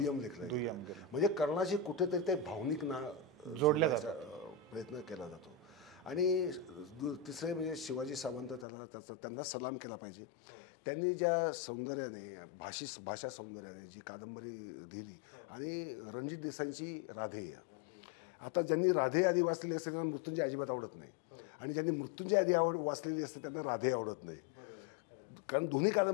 लेखलं गेलं. म्हणजे कर्णाची कुठेतरी ते भावनिक जोडण्याचा प्रयत्न केला जातो. आणि तिसरे म्हणजे शिवाजी सावंत त्यांना सलाम केला पाहिजे. त्यांनी ज्या सौंदर्याने भाषा सौंदर्याने जी कादंबरी दिली आणि रणजित देसाईंची राधेय. आता ज्यांनी राधे आधी वाचलेली असते त्यांना मृत्युंजय अजिबात आवडत नाही, आणि ज्यांनी मृत्युंजय आधी वाचलेली असते त्यांना राधे आवडत नाही. कारण दोन्ही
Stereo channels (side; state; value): right; drops out; at 8.7 s